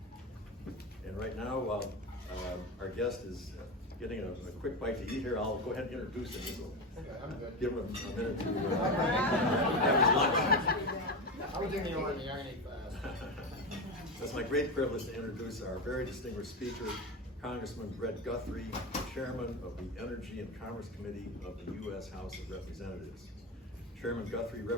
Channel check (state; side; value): normal; both; correlation 0.19